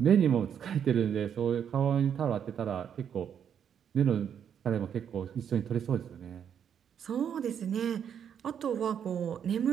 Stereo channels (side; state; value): left; quieter; 8.4 dB